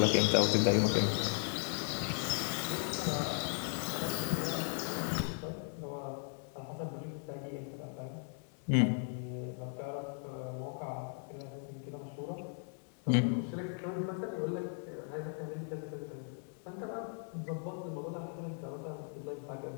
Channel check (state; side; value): silent; right; 53 dB below the other